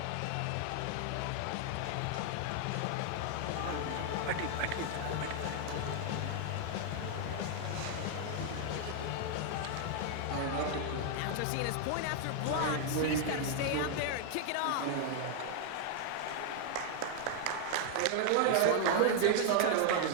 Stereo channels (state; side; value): different; both; correlation 0.00